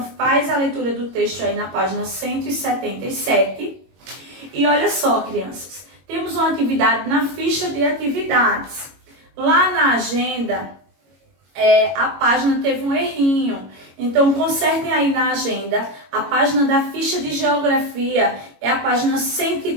faz a leitura do texto aí na página 177. E olha só, crianças, temos uma atividade na ficha de atividades. Lá na agenda, a página teve um errinho. Então, consertem aí na agenda. A página da ficha de geografia é a página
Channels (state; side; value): late; left; 22 ms